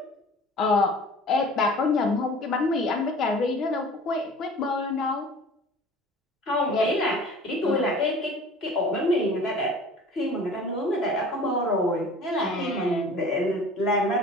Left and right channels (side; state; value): both; normal; correlation 0.44